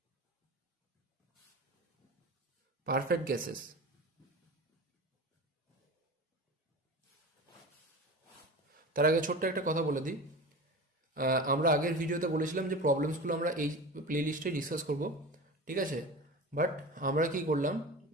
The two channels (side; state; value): both; normal; correlation 0.31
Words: perfect gases. তার আগে ছোট্ট একটা কথা বলে দিই। আমরা আগের ভিডিওতে বলেছিলাম যে প্রবলেমসগুলো আমরা এই প্লেলিস্টে ডিসকাস করব, ঠিক আছে? বাট আমরা কি করলাম,